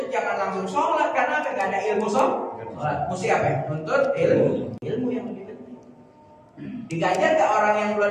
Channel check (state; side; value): identical; both; correlation 1.00